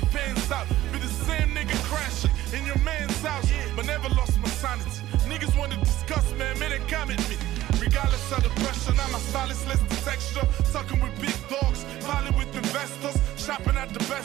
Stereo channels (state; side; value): quieter; left; 14.9 dB